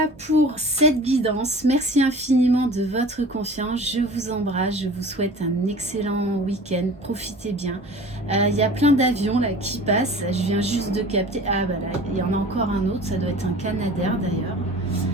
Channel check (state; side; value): normal; both; correlation 0.42